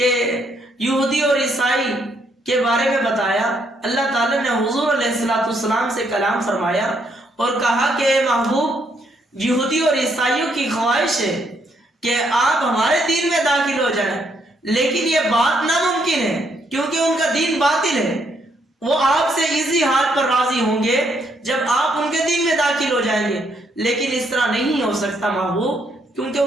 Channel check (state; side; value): normal; both; correlation 0.73